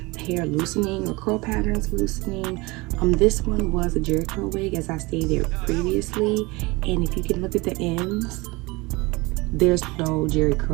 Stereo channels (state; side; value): quieter; left; 23.9 dB